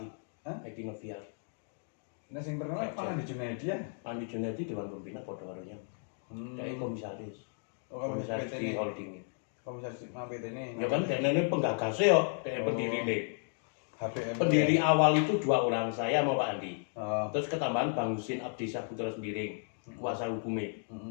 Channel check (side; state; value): right; silent; 55 dB below the other